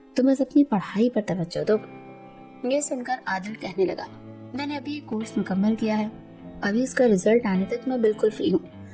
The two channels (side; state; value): both; identical; correlation 1.00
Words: تم بس اپنی پڑھائی پر توجہ دو۔ یہ سن کر عادل کہنے لگا میں نے ابھی کورس مکمل کیا ہے، ابھی اس کا رزلٹ آنے تک میں بالکل فری ہوں،